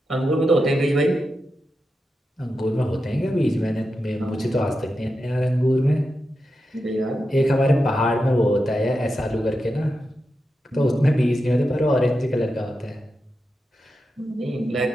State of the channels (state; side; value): normal; both; correlation 0.89